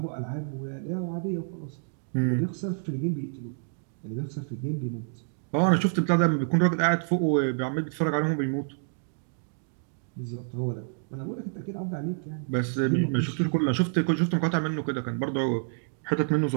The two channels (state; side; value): silent; left; digital silence